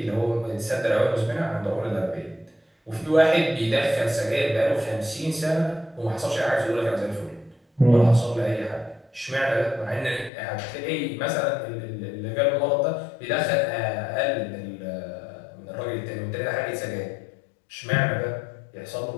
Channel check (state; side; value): drops out; right; at 10.3 s